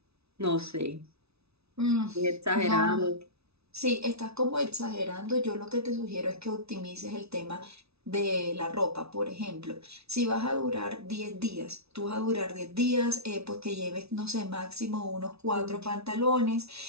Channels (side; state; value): left; late; 0.79 ms